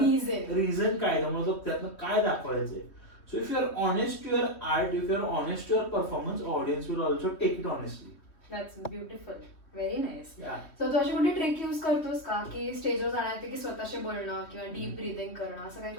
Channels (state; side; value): late; right; 3.1 ms